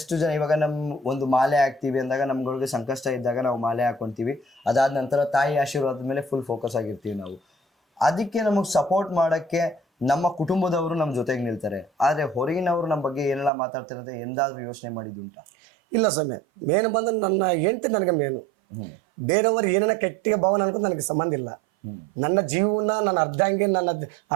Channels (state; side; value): drops out; left; at 13.5 s